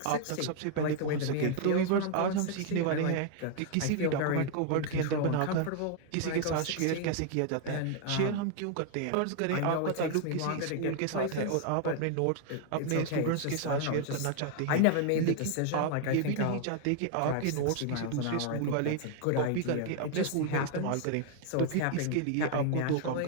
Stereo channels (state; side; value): different; both; correlation 0.00